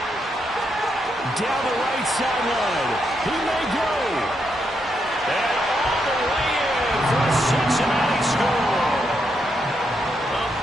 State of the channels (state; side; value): normal; both; correlation 0.80